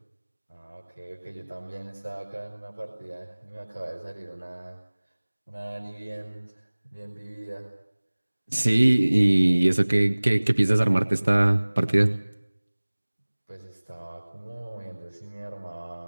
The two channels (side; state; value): both; inverted; correlation -1.00